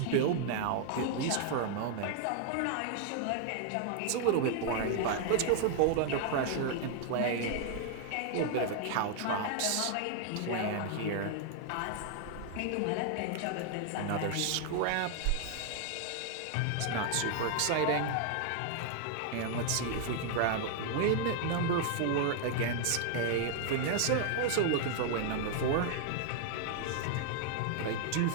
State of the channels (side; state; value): both; different; correlation 0.00